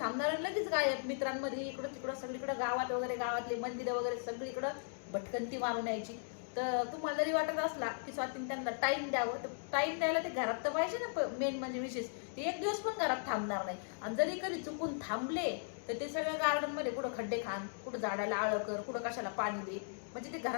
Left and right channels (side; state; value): right; silent; digital silence